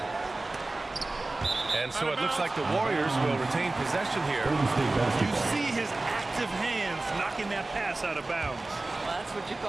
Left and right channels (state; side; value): quieter; left; 3.0 dB